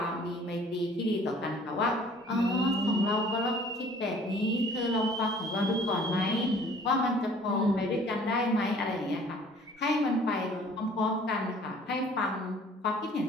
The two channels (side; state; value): both; normal; correlation 0.53